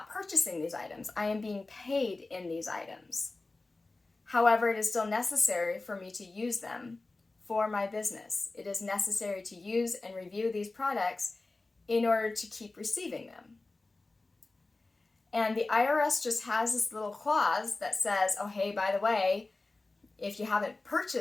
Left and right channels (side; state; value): right; quieter; 3.3 dB